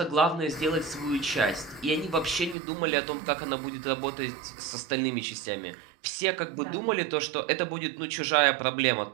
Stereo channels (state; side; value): drops out; left; at 2.6 s